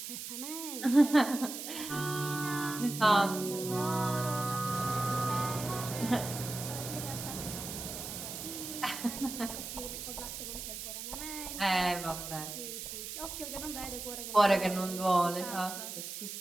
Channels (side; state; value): right; noise; hiss, 7 dB below the sound